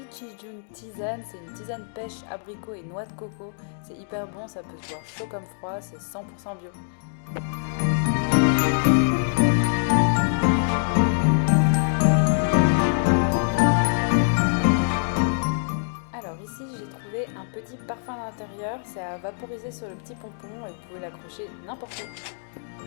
June tisane, c'est une tisane pêche, abricot et noix de coco, c'est hyper bon, ça peut se boire chaud comme froid, c'est 100% bio. Alors ici j'ai trouvé un petit parfum d'intérieur, c'est à vaporiser sur le petit pompon et vous pouvez l'accrocher n'importe où.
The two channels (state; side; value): silent; right; digital silence